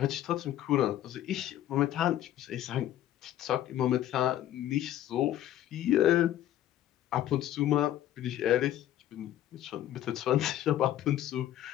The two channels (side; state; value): right; quieter; 12.5 dB